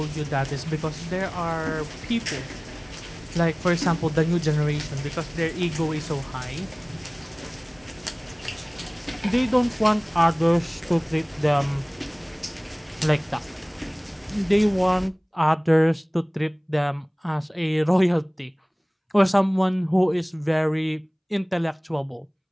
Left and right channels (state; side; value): identical; both; correlation 1.00